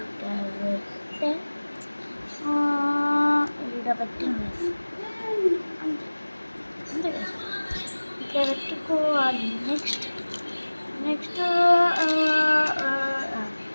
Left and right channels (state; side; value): inverted; both; correlation -1.00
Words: పెట్టిన అంతే అంతే ఇట్లా పెట్టుకోవాలి. నెక్స్ట్